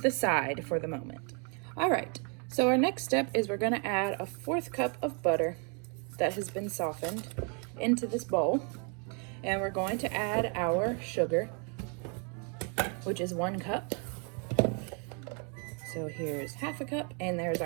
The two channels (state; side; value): quieter; left; 37.3 dB